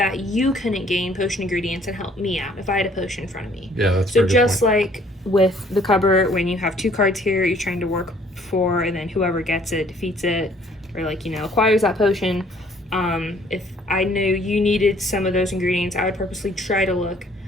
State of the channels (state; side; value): normal; both; correlation 0.60